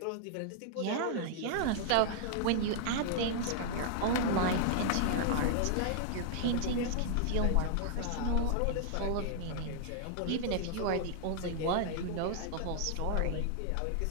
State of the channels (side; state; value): both; different; correlation -0.01